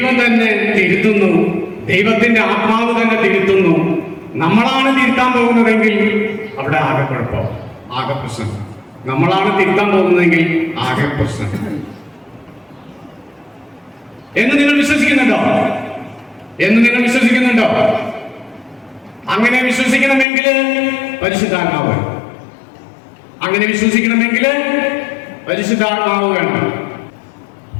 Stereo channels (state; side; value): drops out; right; at 20.2 s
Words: തന്നെ തിരുത്തുന്നു. ദൈവത്തിന്റെ ആത്മാവ് തന്നെ തിരുത്തുന്നു. നമ്മളാണ് തിരുത്താൻ പോകുന്നതെങ്കിൽ അവിടെ ആകെ കുഴപ്പം, ആകെ പ്രശ്നം. നമ്മളാണ് തിരുത്താൻ പോകുന്നതെങ്കിൽ ആകെ പ്രശ്നം. എന്ന് നിങ്ങൾ വിശ്വസിക്കുന്നുണ്ടോ? അങ്ങനെ വിശ്വസിക്കണമെങ്കിൽ പരിശുദ്ധാത്മാവ് വേണം. അങ്ങനെ വിശ്വസിക്കണമെങ്കിൽ പരിശുദ്ധാത്മാവ് വേണം.